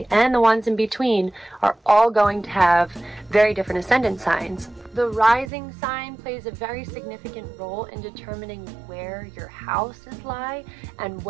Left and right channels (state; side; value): drops out; left; at 5.5 s